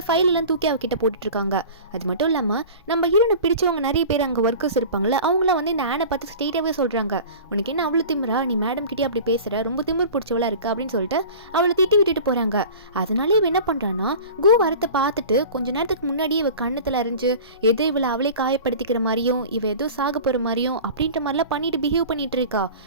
ஃபைல் எல்லாம் தூக்கி அவகிட்ட போட்டுட்டு இருக்காங்க. அது மட்டும் இல்லாமல் நம்ம ஹீரோனை பிடிச்சவங்க நிறைய பேர் அங்கே ஒர்க்கர்ஸ் இருப்பாங்களே அவங்கள வந்து இந்த ஆனை பார்த்து ஸ்ட்ரெயிட்டாகவே சொல்கிறாங்க, உனக்கு என்ன அவ்வளோ திமிரா, நீ மேடம் கிட்டே அப்படி பேசுகிற, ரொம்ப திமிர் பிடிச்சவளா இருக்கு அப்படின்னு சொல்லிட்டு அவளை திட்டி விட்டுட்டு போகிறாங்க. அதனாலே இவ என்ன பண்ணுறான்னா கு வரத்தை பார்த்துட்டு கொஞ்ச நேரத்துக்கு முன்னாடியே இவ கண்ணத்தில் அறிஞ்சு எதோ இவளை அவளே காயப்படுத்திக்கிற மாதிரியும் இவ ஏதோ சாக போகிற மாதிரியும் அப்படின்ற மாதிரிலாம் பண்ணிட்டு பிஹேவ் பண்ணிட்டு இருக்கா.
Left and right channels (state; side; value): inverted; both; correlation -0.38